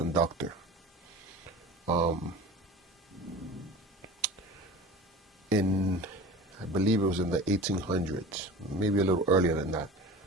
I believe it was in the 1800s, maybe a little earlier than that,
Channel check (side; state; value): both; normal; correlation 0.37